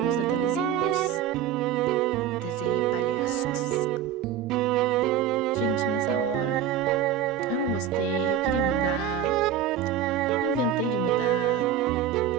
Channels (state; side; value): quieter; left; 9.0 dB